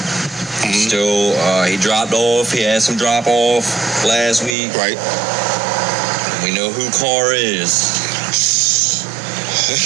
he dropped off. He had some drop off last week. Right. We know who Carr is.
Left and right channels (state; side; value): drops out; left; at 4.5 s